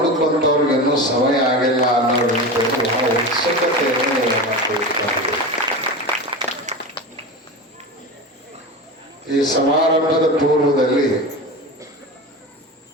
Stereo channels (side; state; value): both; normal; correlation 0.25